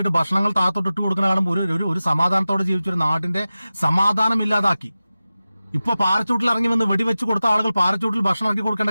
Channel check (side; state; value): both; inverted; correlation -0.95